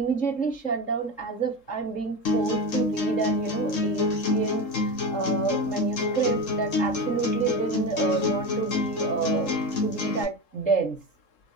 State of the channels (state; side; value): late; right; 3.7 ms